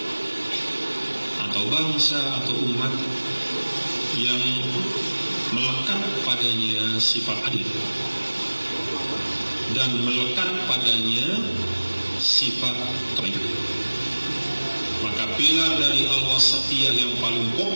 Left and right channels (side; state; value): both; inverted; correlation -1.00